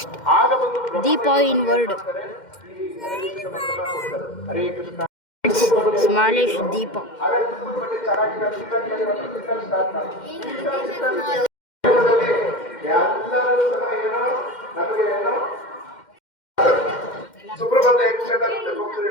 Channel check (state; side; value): late; right; 2.1 ms